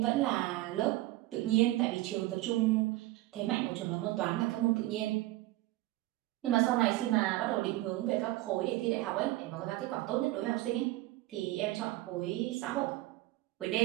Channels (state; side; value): quieter; left; 18.0 dB